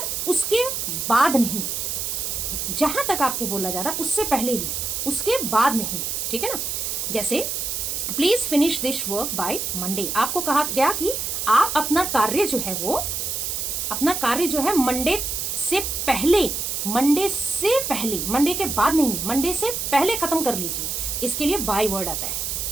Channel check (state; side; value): noise; right; hiss, 2 dB below the sound